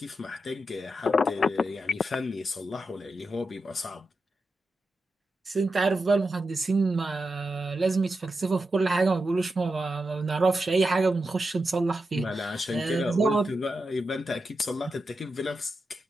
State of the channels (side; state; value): both; normal; correlation 0.88